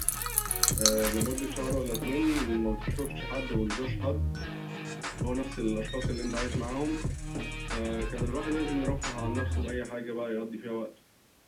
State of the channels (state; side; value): identical; both; correlation 1.00